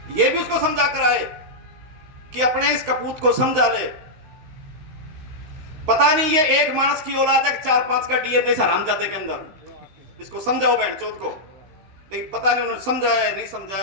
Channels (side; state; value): left; late; 16 ms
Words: ये भी उसको समझा कर आए कि अपने इस कपूत को समझा ले। पता नहीं ये एक मानस की औलाद है, 4-5 का डीएनए हरामजादे के अंदर। इसको समझाओ बहन चौथ को, लेकिन पता नहीं उन्होंने समझाया है नहीं